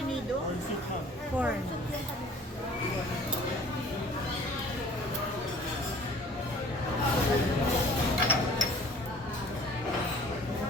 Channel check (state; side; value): normal; both; correlation 0.51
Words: nido? Corn soup, ma'am. Corn.